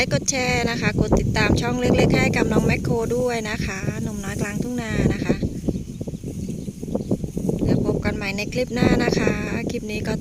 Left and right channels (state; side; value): identical; both; correlation 1.00